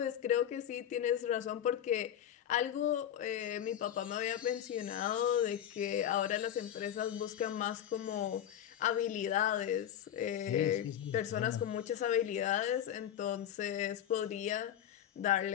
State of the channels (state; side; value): quieter; right; 10.4 dB